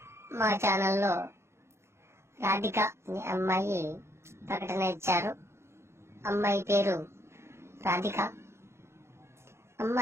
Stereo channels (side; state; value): left; late; 0.13 ms